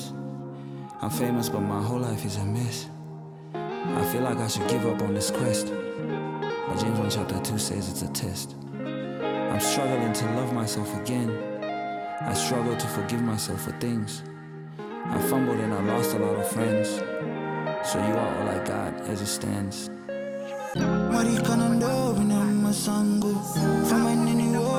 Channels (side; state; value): both; identical; correlation 1.00